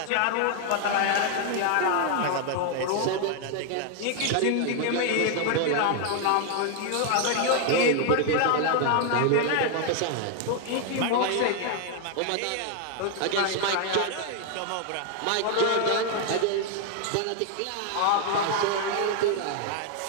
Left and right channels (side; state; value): both; different; correlation 0.00